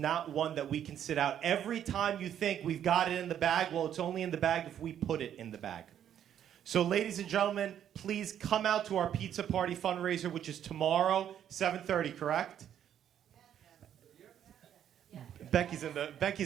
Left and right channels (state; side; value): quieter; left; 9.9 dB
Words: one that we can sit out. Every time you think we've got it in the bag, well, it's only in the bag if we put it in the bag. So, ladies and gentlemen, please come out to our pizza party fundraiser, which is tomorrow, 7:30, correct? Becky's in